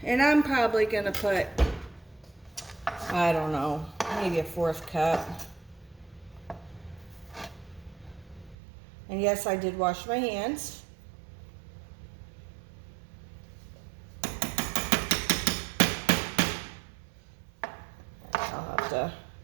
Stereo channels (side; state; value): left; drops out; at 8.6 s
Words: And I'm probably gonna put, I don't know, maybe a 1/4 cup. And yes, I did wash my hands. I'll have to